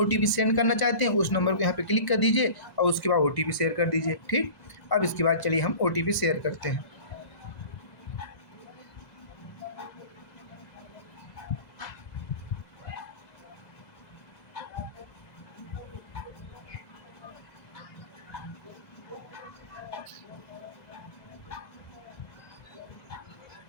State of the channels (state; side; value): late; right; 2.0 ms